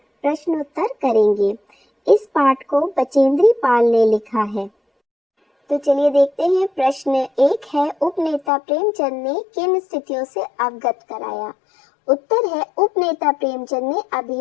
प्रश्नोत्तर करेंगे। इस पाठ को बचेंद्री पाल ने लिखा है। तो चलिए देखते हैं। प्रश्न 1 है, उपनेता प्रेमचंद ने किन स्थितियों से अवगत कराया? उत्तर है, उपनेता प्रेमचंद ने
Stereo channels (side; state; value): right; drops out; at 8.5 s